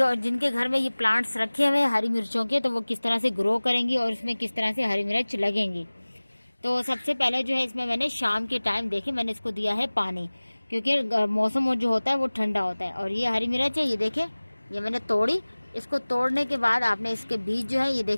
जिनके घर में ये प्लांट्स रखे हुए हैं हरी मिर्चों के, तो वो किस तरह से ग्रो करेंगी और इसमें किस तरह से हरी मिर्च लगेंगी। तो सबसे पहले जो है इसमें मैंने शाम के टाइम देखे मैंने इसको दिया है पानी, क्योंकि मौसम जो होता है वो ठंडा होता है। और ये हरी मिर्च है, ये देखें, ये मैंने तोड़ी। इसको तोड़ने के बाद आपने इसके बीज जो है ये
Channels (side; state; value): both; inverted; correlation -1.00